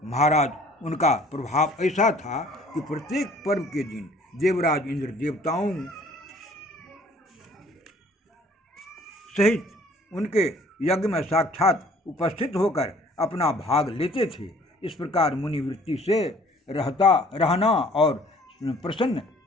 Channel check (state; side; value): normal; both; correlation 0.55